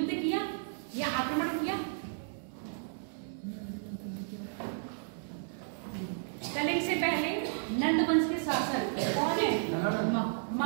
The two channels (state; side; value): silent; left; 56 dB below the other